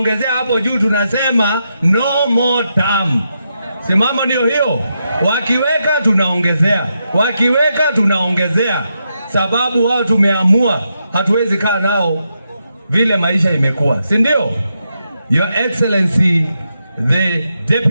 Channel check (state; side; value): inverted; both; correlation -0.84